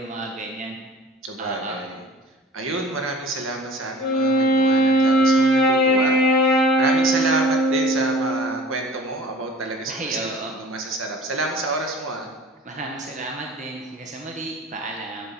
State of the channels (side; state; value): both; normal; correlation 0.44